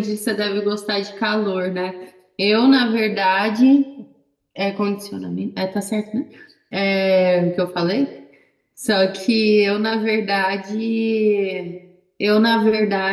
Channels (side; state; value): both; identical; correlation 1.00